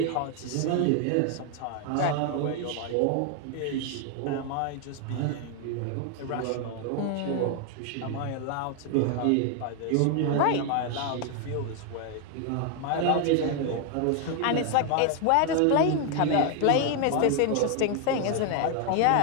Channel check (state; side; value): different; both; correlation 0.00